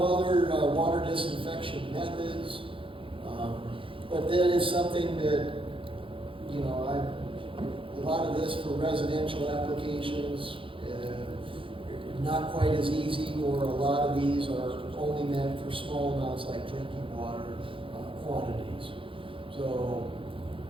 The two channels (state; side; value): late; left; 0.25 ms